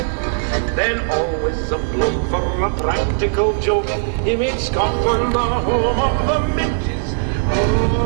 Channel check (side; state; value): left; silent; digital silence